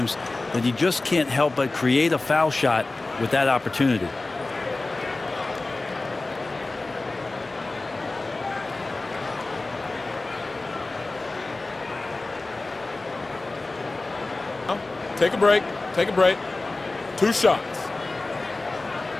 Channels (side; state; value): right; quieter; 3.2 dB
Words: that he just can't help but create a foul shot with that opportunity. Take a break. Take a break. 2 shots.